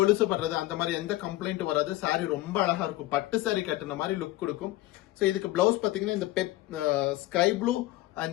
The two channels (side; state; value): right; quieter; 16.9 dB